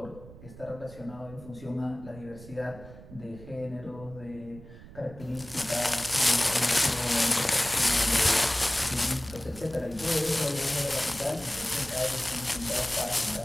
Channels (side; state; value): right; noise; rumble, 17 dB below the sound